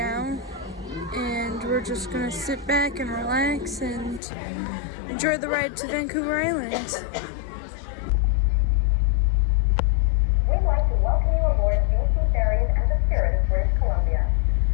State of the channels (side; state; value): right; drops out; at 4.2 s